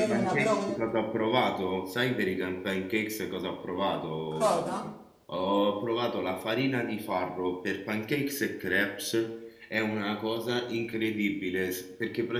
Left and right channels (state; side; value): identical; both; correlation 1.00